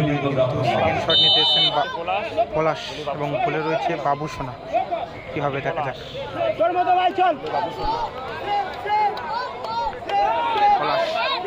সেকেন্ড শট নিতে এসেছেন পলাশ এবং বলে রয়েছে বাবুসোনা কি হবে দেখা যাক পলাশ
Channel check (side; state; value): both; identical; correlation 1.00